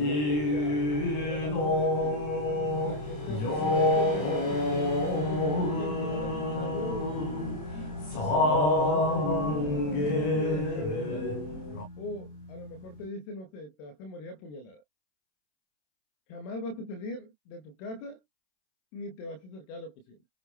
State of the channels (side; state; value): right; late; 27 ms